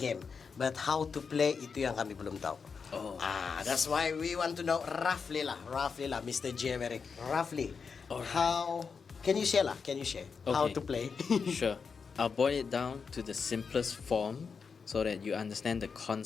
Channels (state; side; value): quieter; right; 5.6 dB